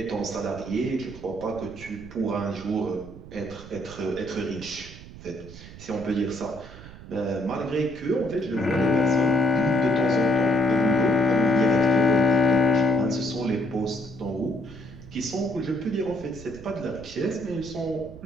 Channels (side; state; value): right; noise; rumble, 16 dB below the sound